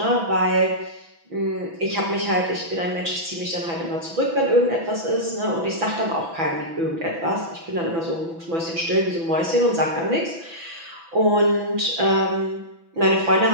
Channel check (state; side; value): late; left; 6.0 ms